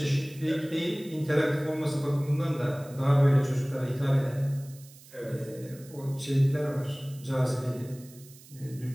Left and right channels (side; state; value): right; noise; hiss, 22 dB below the sound